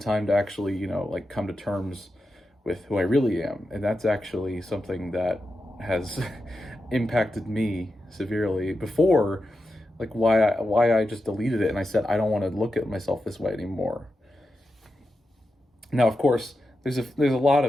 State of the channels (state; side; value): normal; both; correlation 0.89